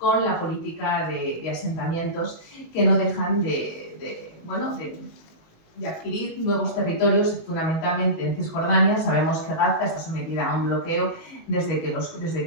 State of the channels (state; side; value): late; right; 19 ms